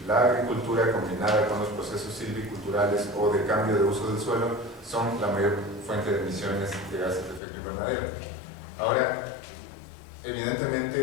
La agricultura combinada con los procesos silviculturales o de cambio de uso del suelo son la mayor fuente de emisiones de gases de efecto invernadero. Ahora,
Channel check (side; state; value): right; drops out; at 7.4 s